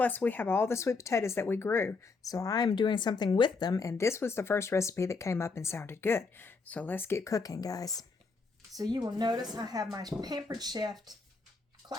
we have all the sweet potatoes that we grew. So I'm doing something with them, and this was the first recipe that came up and sounded good. So let's get cooking, guys. So you will notice I have my Pampered Chef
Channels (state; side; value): quieter; right; 4.3 dB